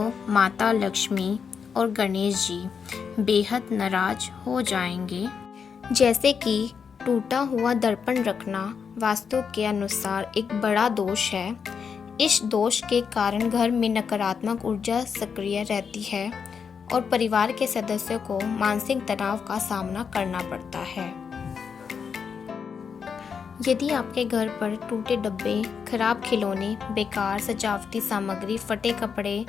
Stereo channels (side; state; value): right; quieter; 6.4 dB